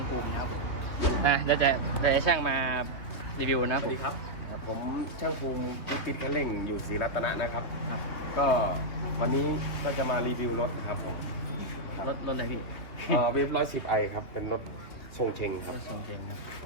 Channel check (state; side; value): late; right; 3.2 ms